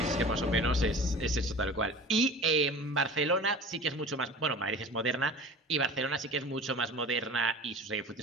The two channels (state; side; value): normal; both; correlation 0.39